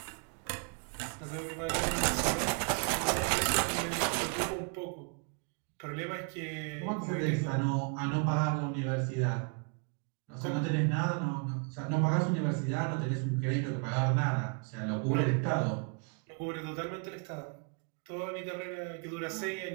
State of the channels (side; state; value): left; quieter; 35.6 dB